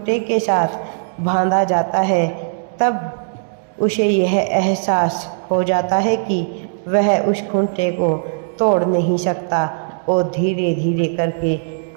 के साथ बांधा जाता है, तब उसे यह एहसास हो जाता है कि वह उस खूंटे को तोड़ नहीं सकता और धीरे धीरे करके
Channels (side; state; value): left; silent; digital silence